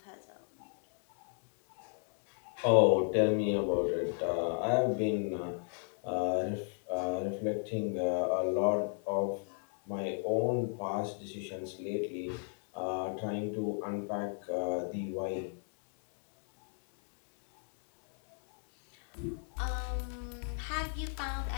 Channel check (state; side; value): silent; right; 54 dB below the other